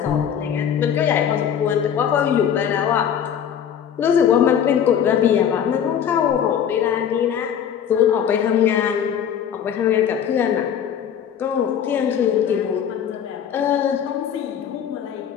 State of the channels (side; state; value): right; quieter; 8.7 dB